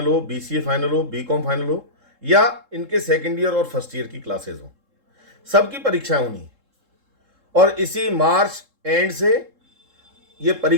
हो, BCA फाइनल हो, BCom फाइनल हो या इनके सेकेंड ईयर और फर्स्ट ईयर की क्लासेस हो, सबकी परीक्षाएं होनी है। और इसी मार्च एंड से ये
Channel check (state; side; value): late; left; 3.7 ms